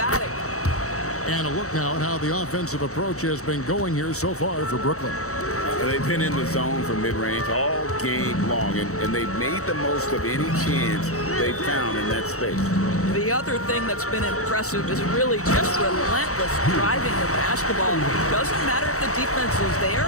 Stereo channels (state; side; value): late; right; 0.65 ms